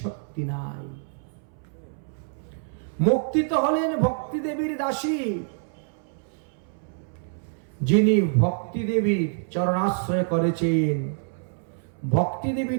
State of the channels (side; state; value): left; silent; 61 dB below the other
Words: শক্তি নাই। মুক্তি তো হলেন ভক্তি দেবীর দাসী, যিনি ভক্তি দেবীর চরণাশ্রয় করেছেন। ভক্তি দেবী